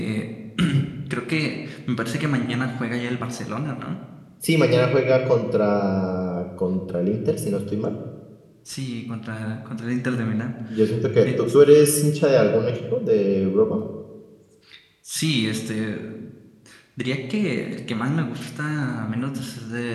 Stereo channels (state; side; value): identical; both; correlation 1.00